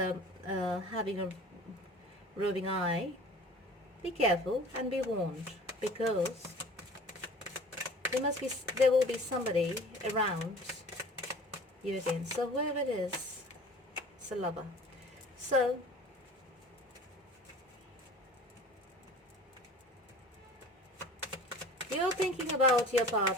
a roving eye, be careful and be warned, because there will be somebody around you again. So whoever it is, it's a lover. So you're thinking about your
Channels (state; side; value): normal; both; correlation 0.43